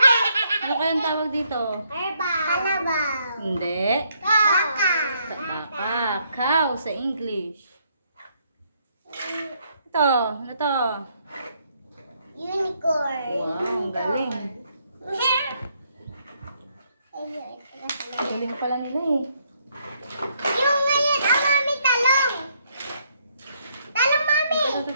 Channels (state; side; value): inverted; both; correlation -0.73